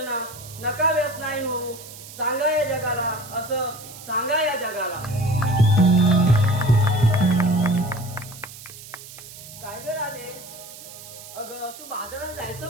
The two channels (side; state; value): right; noise; hiss, 16 dB below the sound